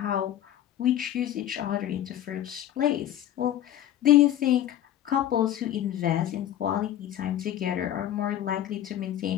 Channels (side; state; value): right; quieter; 11.8 dB